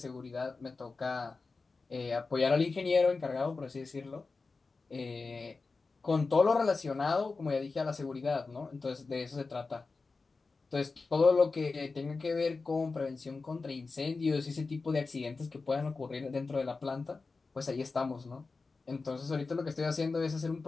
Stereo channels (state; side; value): quieter; right; 4.1 dB